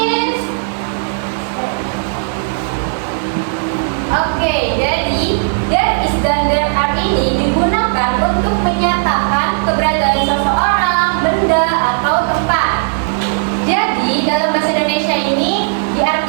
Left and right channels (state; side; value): silent; left; digital silence